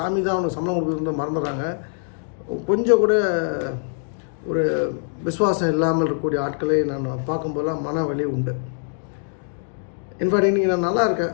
தான் அவனுக்கு சம்பளம் கொடுக்குறது மறந்துடுறாங்க. கொஞ்சம் கூட ஒரு விசுவாசம் இல்லாமல் இருக்கக்கூடிய ஆட்களை நான் பார்க்கும்போதெல்லாம் மன வலி உண்டு. இன்ஃபேக்ட் இன்றைக்கி நான் நல்லா இருக்கேன்,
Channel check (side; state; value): right; silent; digital silence